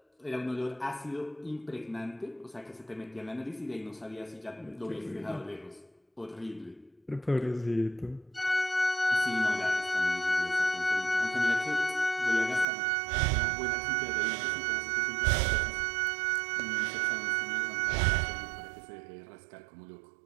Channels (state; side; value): drops out; left; at 12.7 s